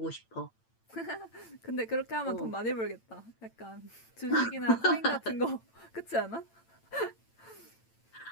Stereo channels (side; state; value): right; late; 8.9 ms